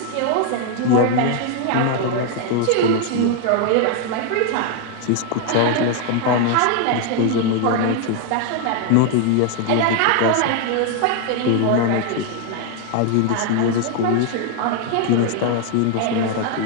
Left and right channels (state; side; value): different; both; correlation 0.00